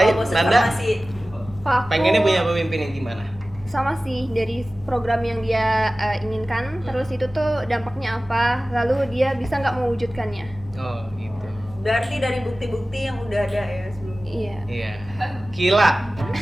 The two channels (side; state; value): both; normal; correlation 0.97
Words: Oh, bosan Nanda farmasi. Kalau aku pengennya punya pemimpin yang gimana? sama sih, dari program yang dia inginkan, terus itu tuh dampaknya apa, lalu dia bisa nggak mewujudkannya. Oh gitu. Berarti dari bukti-bukti yang udah ada ya sebelumnya. Iya. Iya. Kila.